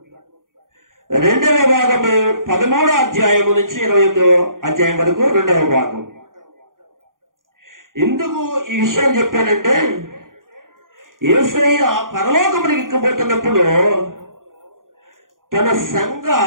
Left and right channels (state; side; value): late; left; 0.90 ms